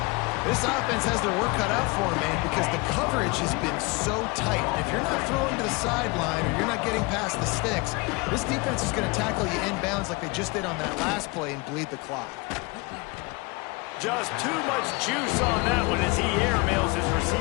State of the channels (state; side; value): quieter; right; 26.3 dB